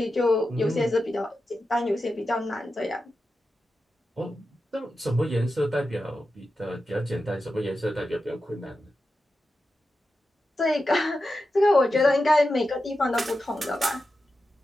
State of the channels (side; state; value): both; normal; correlation 0.90